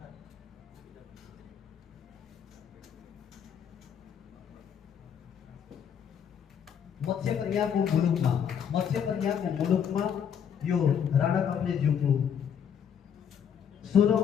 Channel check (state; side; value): quieter; right; 8.1 dB